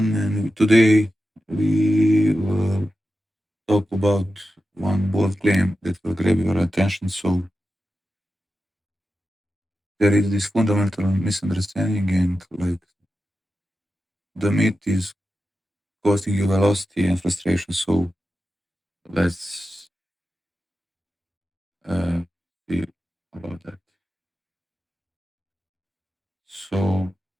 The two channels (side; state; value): both; normal; correlation 0.91